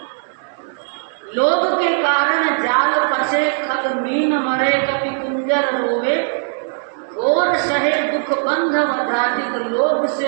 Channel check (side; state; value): left; silent; 62 dB below the other